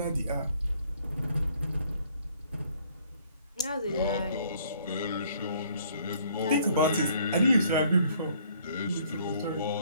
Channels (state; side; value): inverted; both; correlation -0.62